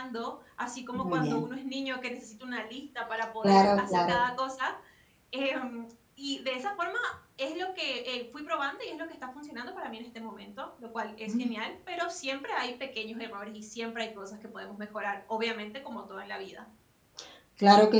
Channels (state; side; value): identical; both; correlation 1.00